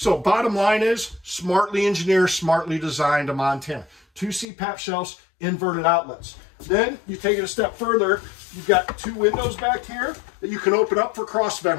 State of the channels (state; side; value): drops out; right; at 4.5 s